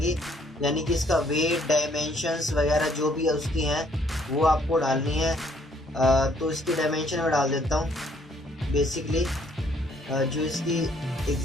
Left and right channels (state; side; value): normal; both; correlation 0.65